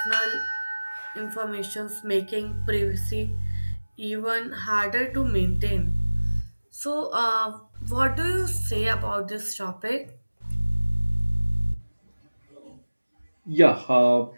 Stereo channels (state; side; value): inverted; both; correlation -1.00